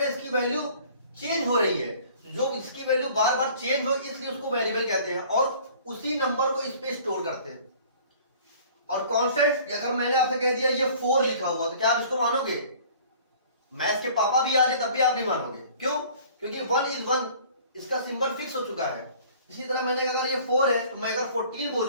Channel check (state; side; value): inverted; both; correlation -0.50